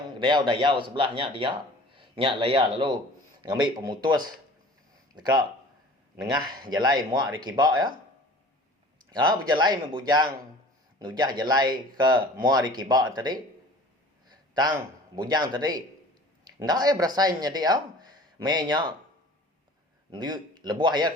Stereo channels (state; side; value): normal; both; correlation 0.45